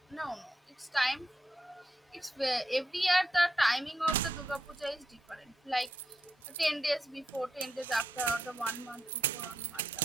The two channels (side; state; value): both; normal; correlation 0.81